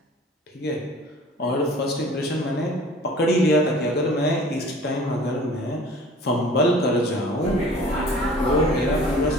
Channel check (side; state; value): both; normal; correlation 0.46